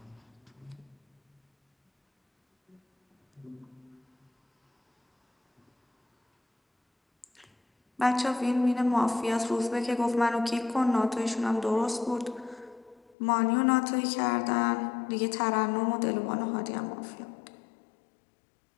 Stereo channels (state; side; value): drops out; right; at 13.2 s